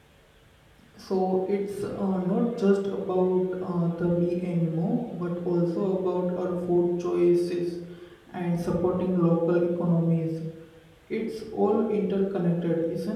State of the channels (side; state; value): both; identical; correlation 1.00